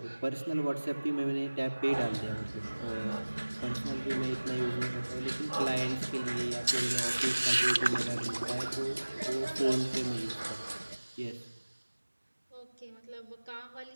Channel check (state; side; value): inverted; both; correlation -1.00